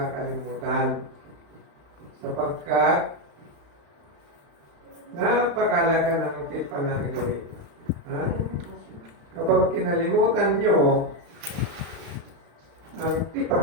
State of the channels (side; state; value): left; late; 35 ms